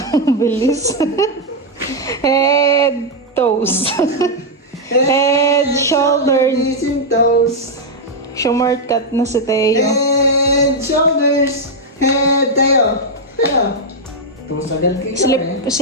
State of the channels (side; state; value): both; normal; correlation -0.01